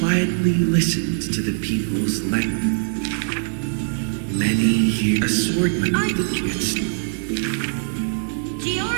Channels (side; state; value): left; silent; digital silence